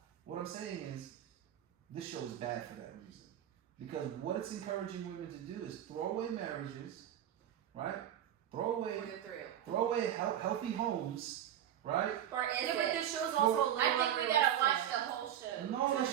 what I'm saying is, this show is bad for that reason. Because what it's encouraging women to do is throw away marriages, right? Throw away healthy homes, right? Or is Yeah, but it? this show's also a little I think we gotta watch unrealistic. the whole show. No, to the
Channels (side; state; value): left; quieter; 10.9 dB